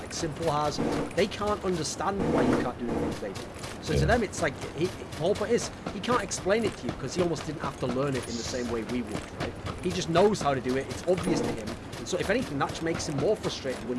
Simple has. They can't understand why you can't do the things they do. So to them, it's like, the whole point is, he can't explain it to you because he almost didn't have to learn it in the same way we would, right? He just knows how to do it. It's obvious to him. And so if anything, that makes him more frustrated when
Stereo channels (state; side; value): identical; both; correlation 1.00